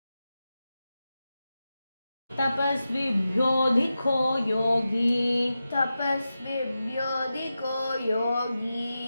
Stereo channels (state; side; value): inverted; both; correlation -0.91